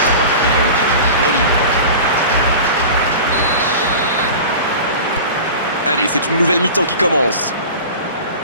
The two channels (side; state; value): both; inverted; correlation -0.35